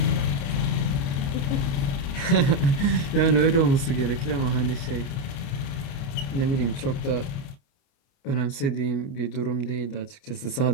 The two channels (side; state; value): right; late; 29 ms